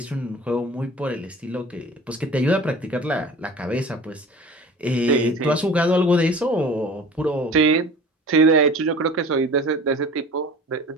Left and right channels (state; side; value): normal; both; correlation 0.41